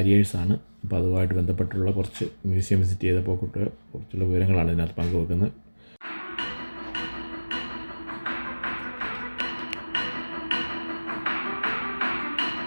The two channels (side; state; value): both; inverted; correlation -1.00